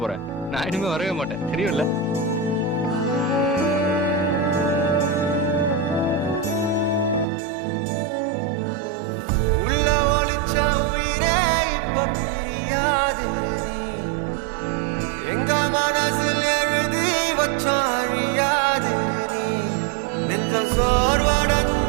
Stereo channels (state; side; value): drops out; left; at 7.2 s